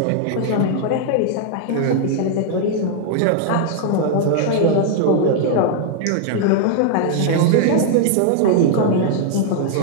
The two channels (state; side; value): different; both; correlation 0.00